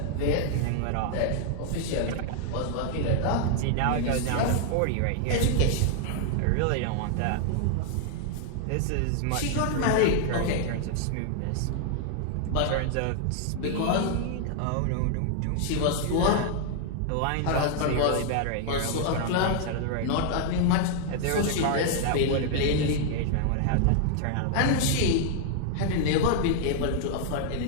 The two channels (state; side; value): different; both; correlation 0.00